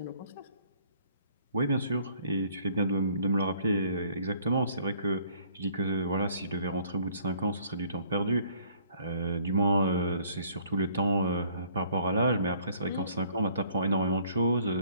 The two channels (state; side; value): inverted; both; correlation -0.60